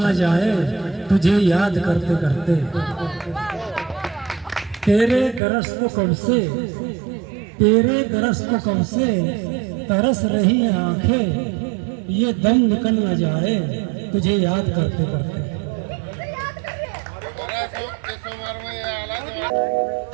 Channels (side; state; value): left; drops out; at 5.4 s